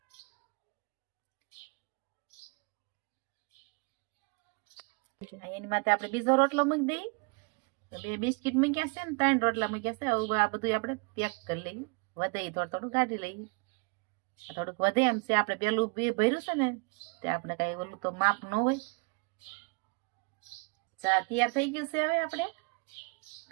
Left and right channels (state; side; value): quieter; left; 32.5 dB